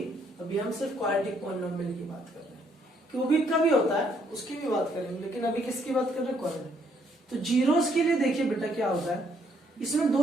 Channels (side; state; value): both; normal; correlation 0.69